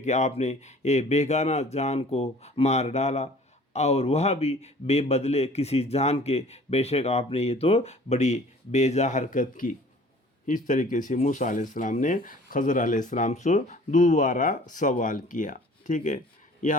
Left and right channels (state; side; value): normal; both; correlation 0.50